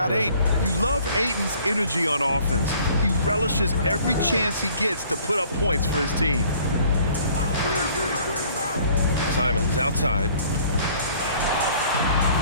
8. You love Ayton's energy on offense. He relishes every chance he gets to put up points for his team. Simons outside.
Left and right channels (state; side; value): inverted; both; correlation -0.56